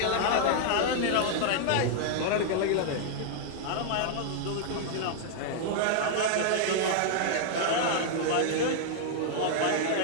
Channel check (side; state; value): both; different; correlation -0.01